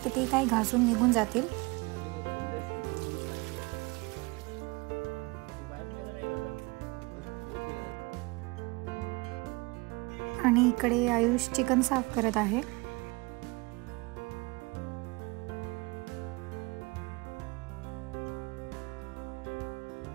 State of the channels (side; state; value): left; quieter; 26.0 dB